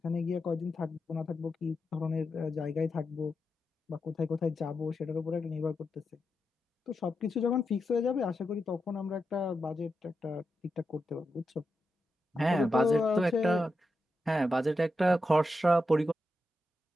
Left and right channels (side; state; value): both; normal; correlation 0.87